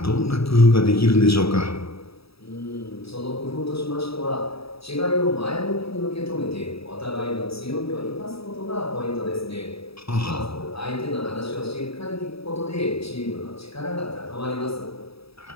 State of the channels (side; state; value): right; late; 0.77 ms